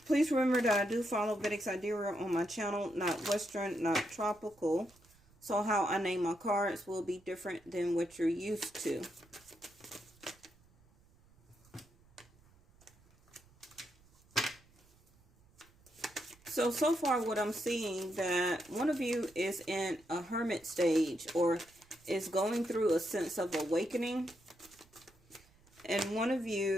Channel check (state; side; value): noise; right; rumble, 29 dB below the sound